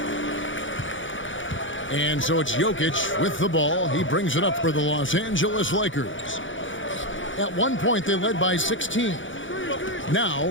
And so it's Jokic with the ball. He brings it up for the Los Angeles Lakers. At one point, they led by 16.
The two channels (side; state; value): right; late; 0.56 ms